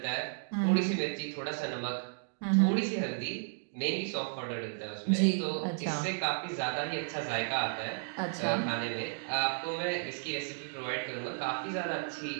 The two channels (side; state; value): left; silent; digital silence